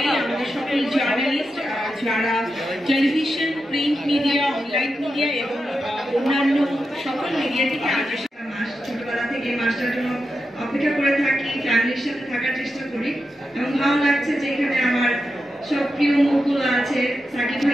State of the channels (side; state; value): both; normal; correlation 0.88